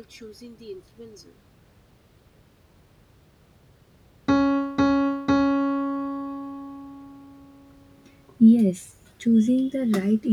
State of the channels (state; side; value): identical; both; correlation 1.00